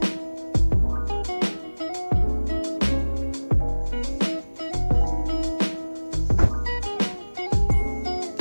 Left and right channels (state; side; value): inverted; both; correlation -1.00